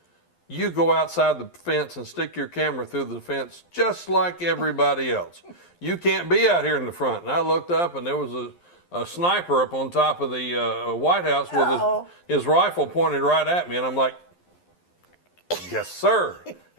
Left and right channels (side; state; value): right; late; 11 ms